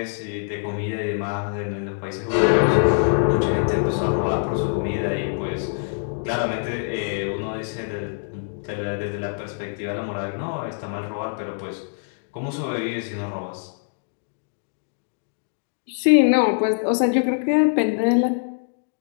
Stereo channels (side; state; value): right; silent; digital silence